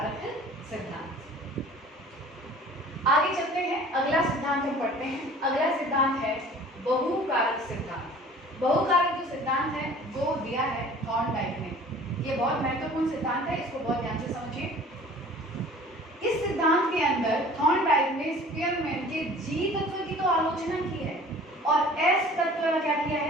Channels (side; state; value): both; normal; correlation 0.47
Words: सिद्धांत। आगे चलते हैं, अगला सिद्धांत हम पढ़ते हैं। अगला सिद्धांत है बहुकारक सिद्धांत। बहुकारक जो सिद्धांत है वो दिया है थॉर्नडाइक ने। ये बहुत महत्वपूर्ण सिद्धांत है, इसको बहुत ध्यान से समझिए। इस सिद्धांत के अंदर थॉर्नडाइक ने स्पीयरमैन के जी तत्व की तो आलोचना की है और एस तत्व का क्या किया